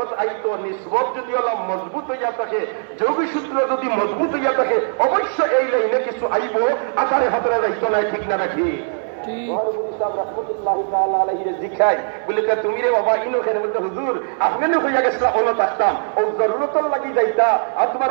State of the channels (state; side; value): silent; left; 61 dB below the other